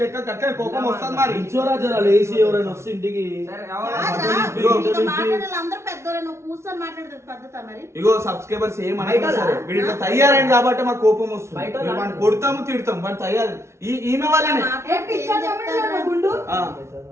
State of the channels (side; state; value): left; late; 0.13 ms